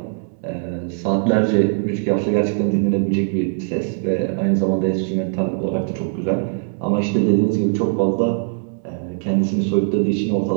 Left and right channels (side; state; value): left; silent; 63 dB below the other